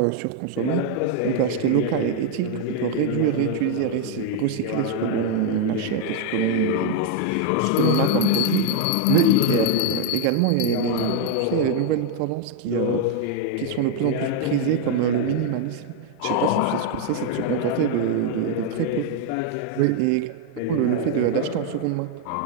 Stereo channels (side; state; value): both; different; correlation 0.00